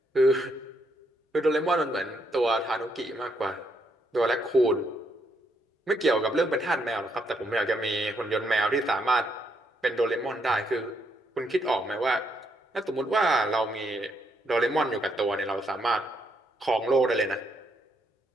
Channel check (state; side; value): normal; both; correlation 0.75